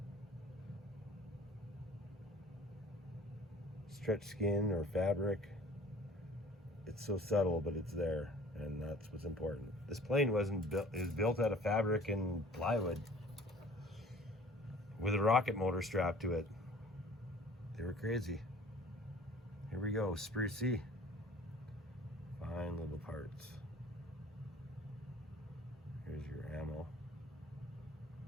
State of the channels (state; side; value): normal; both; correlation 0.48